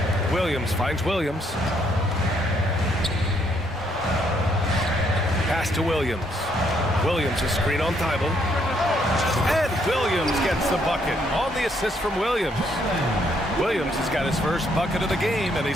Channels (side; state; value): both; normal; correlation 0.71